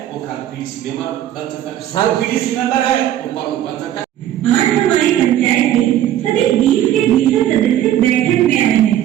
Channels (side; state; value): left; quieter; 11.9 dB